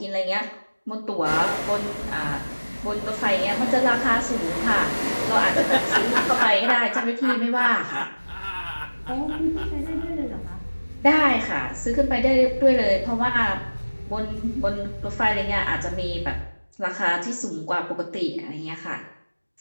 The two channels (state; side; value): inverted; both; correlation -1.00